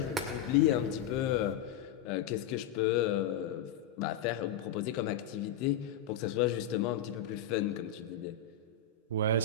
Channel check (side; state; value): right; quieter; 7.4 dB